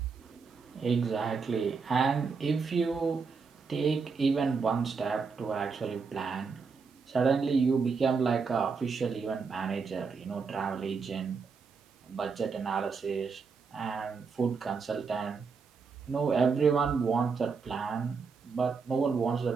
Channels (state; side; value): quieter; left; 5.2 dB